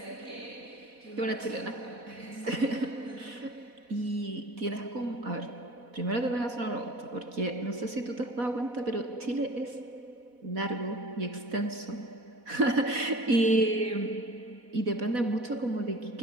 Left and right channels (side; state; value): left; late; 4.1 ms